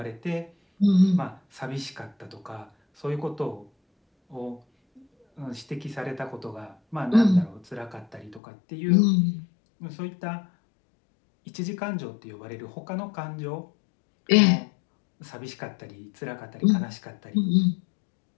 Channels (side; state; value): right; drops out; at 8.4 s